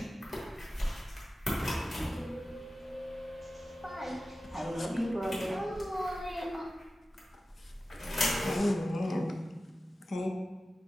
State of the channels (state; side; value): normal; both; correlation 0.95